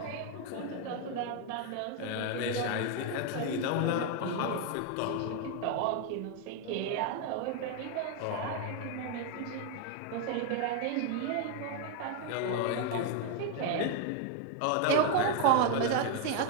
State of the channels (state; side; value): different; both; correlation 0.01